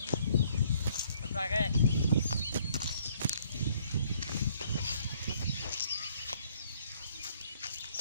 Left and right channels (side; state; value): both; inverted; correlation -0.64